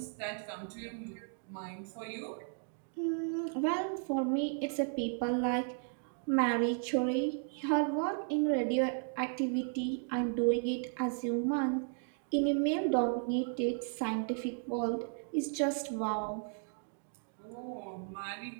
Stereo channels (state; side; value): silent; left; 54 dB below the other